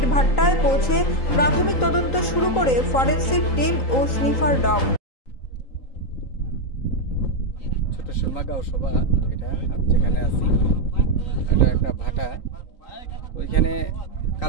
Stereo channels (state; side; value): late; right; 3.8 ms